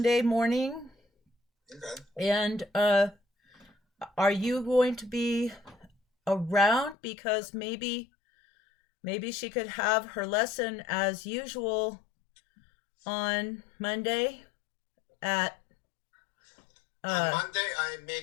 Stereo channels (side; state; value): right; drops out; at 7.0 s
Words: morning. Okay. And are you going to be around? Because maybe she could have her lesson as usual on Monday at on Monday, I may